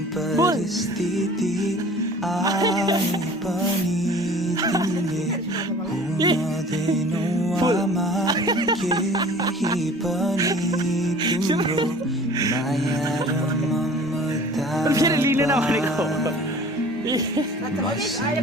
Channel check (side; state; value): both; normal; correlation 0.46